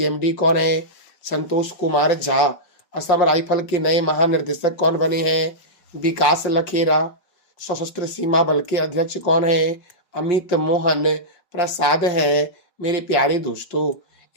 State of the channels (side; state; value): right; late; 5.3 ms